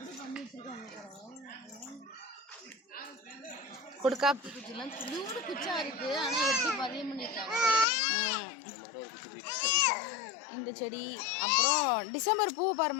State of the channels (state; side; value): drops out; right; at 7.9 s